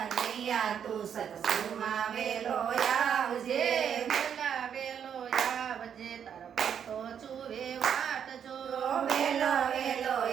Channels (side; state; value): left; quieter; 8.2 dB